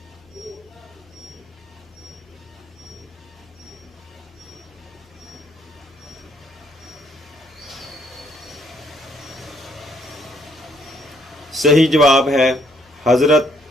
صحیح جواب ہے حضرت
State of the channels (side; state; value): both; normal; correlation 0.68